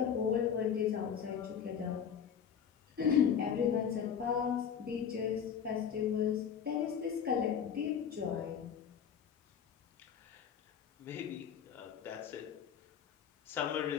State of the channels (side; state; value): right; quieter; 7.9 dB